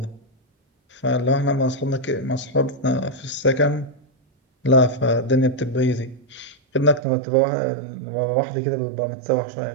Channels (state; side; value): drops out; left; at 7.1 s